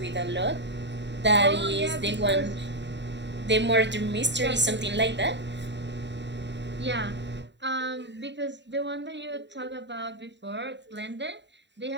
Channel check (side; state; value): left; late; 0.52 ms